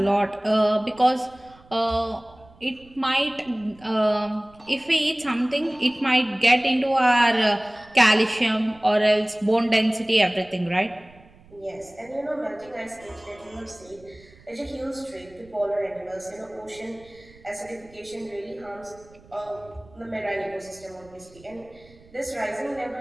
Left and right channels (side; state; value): right; noise; rumble, 25 dB below the sound